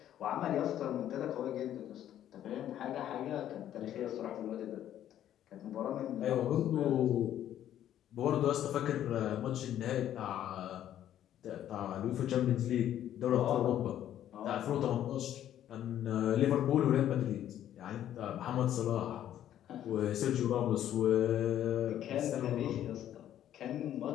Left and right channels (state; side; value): quieter; right; 11.3 dB